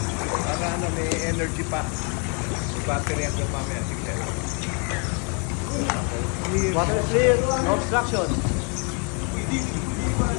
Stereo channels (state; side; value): quieter; right; 36.9 dB